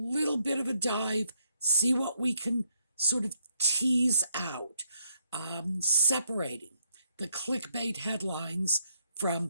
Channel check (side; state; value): both; inverted; correlation -0.73